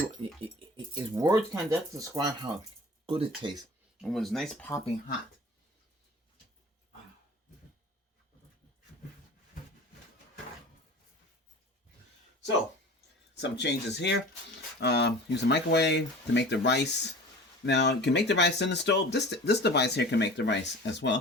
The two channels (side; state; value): both; normal; correlation 0.40